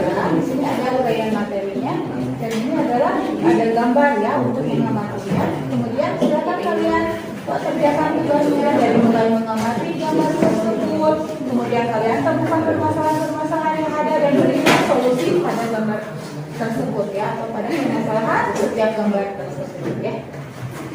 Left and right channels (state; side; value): identical; both; correlation 1.00